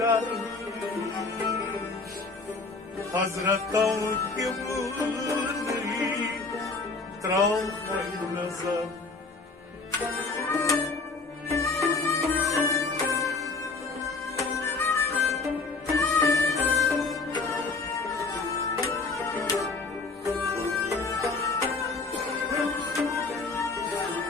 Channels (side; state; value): right; quieter; 3.9 dB